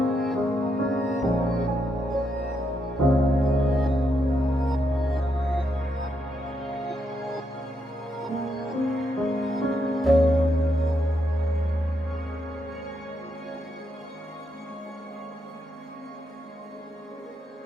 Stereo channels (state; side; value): normal; both; correlation 0.80